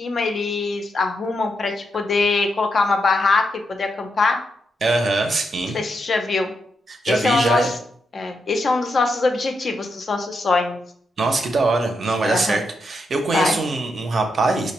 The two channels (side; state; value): both; normal; correlation 0.82